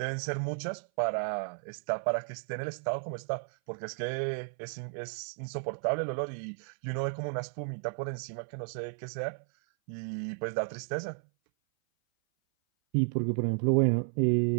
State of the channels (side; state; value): left; silent; 56 dB below the other